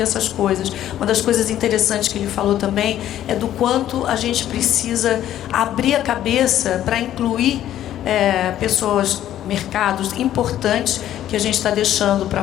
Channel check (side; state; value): right; quieter; 12.0 dB